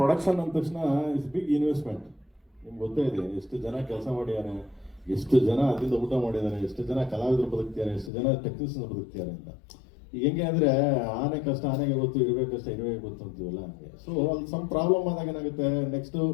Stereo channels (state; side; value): drops out; right; at 8.1 s